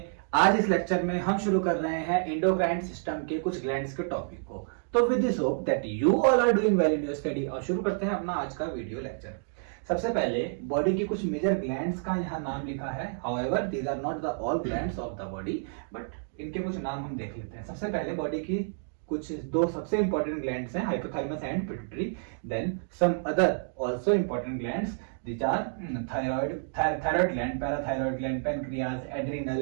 आज इस लेक्चर में हम शुरू कर रहे हैं एंडोक्राइन सिस्टम के कुछ ग्लैंड्स के टॉपिक को। तो with this hope that you all are doing well in your study. और शुरू करते हैं अपना आज का वीडियो लेक्चर। सबसे पहले बॉडी की कुछ मेजर ग्लैंड्स का यहाँ नाम लिखा है। However these are not the all glands of the body, but इनके कुछ नाम हम देख लेते हैं। सबसे पहले बॉडी की कुछ दो सबसे इंपॉर्टेंट ग्लैंड्स हैं, hypothalamus and pituitary. Then some other also important glands which are thyroid gland, parathyroid gland, pancreas, adrenal,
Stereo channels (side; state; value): left; silent; digital silence